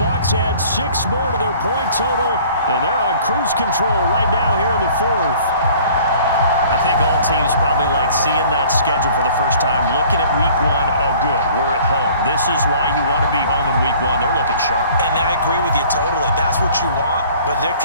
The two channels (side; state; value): both; inverted; correlation -0.51